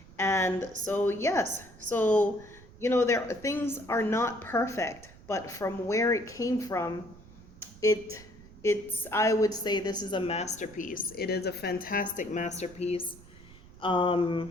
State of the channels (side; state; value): right; noise; rumble, 21 dB below the sound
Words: And so, yes, so, things are not perfect, but from where it came from, I would say this is a masterpiece. It is a fantastic masterpiece.